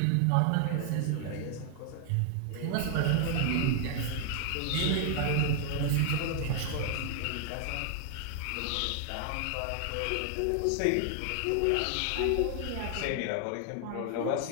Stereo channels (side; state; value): both; different; correlation 0.00